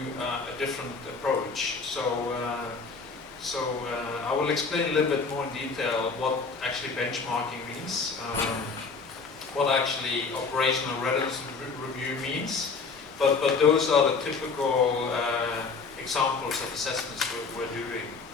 a different approach. So I will explain a little bit more in detail what actually benchmarking means, what actually operational readiness review means, but those are the typical examples of assessments we're doing.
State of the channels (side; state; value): right; quieter; 4.6 dB